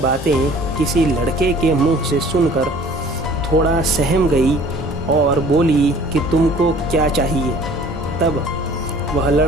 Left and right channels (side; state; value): both; normal; correlation 0.51